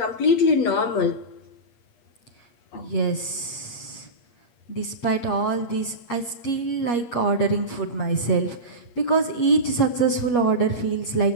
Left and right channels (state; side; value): late; right; 8.4 ms